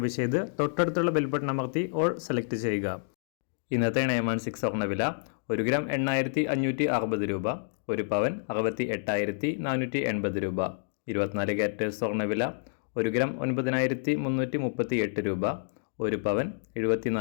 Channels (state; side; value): silent; right; digital silence